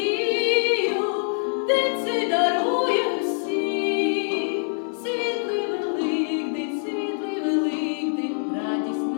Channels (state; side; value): silent; right; 62 dB below the other